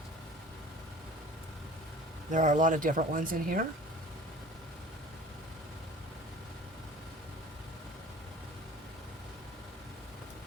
There are a lot of different ones in here.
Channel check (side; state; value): both; normal; correlation 0.44